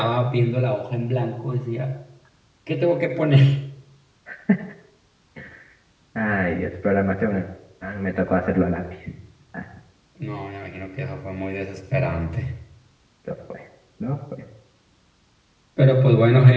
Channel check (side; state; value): both; identical; correlation 1.00